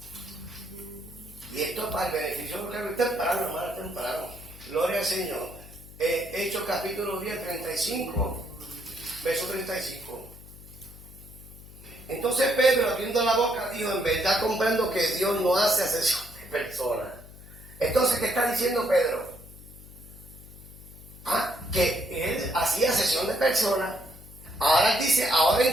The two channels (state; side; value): noise; left; hum, 18 dB below the sound